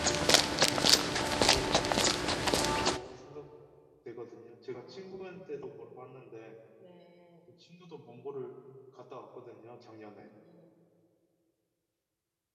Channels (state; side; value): identical; both; correlation 1.00